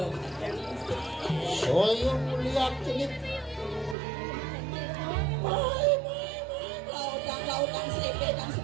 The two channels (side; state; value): left; drops out; at 4.0 s